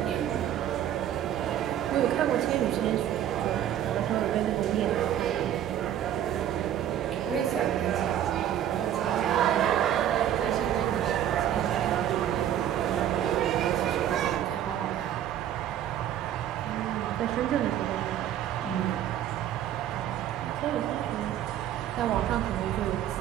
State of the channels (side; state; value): left; quieter; 10.9 dB